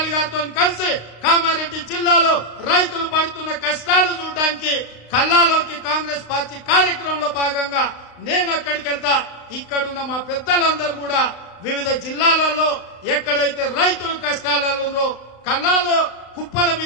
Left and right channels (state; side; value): late; right; 36 ms